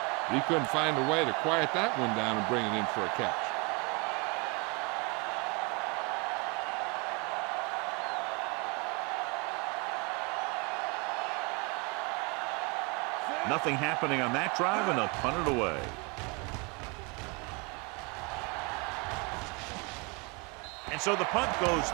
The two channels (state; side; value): quieter; left; 30.0 dB